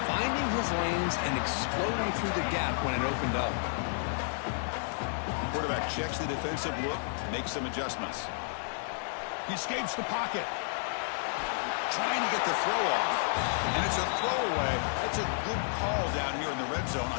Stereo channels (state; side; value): silent; right; digital silence